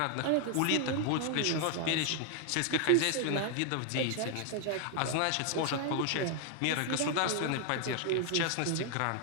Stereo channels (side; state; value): both; different; correlation 0.00